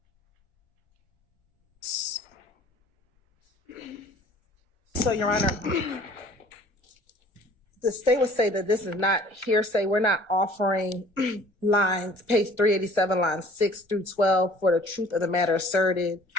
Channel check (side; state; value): right; late; 1.3 ms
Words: So, Your Honor, the state would say that this is not hearsay. We're not offering lines, page 387, lines 6 through 12 for the truth of the matter asserted.